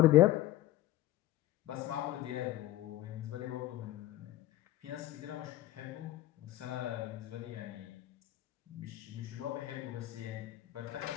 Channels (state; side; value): quieter; right; 15.2 dB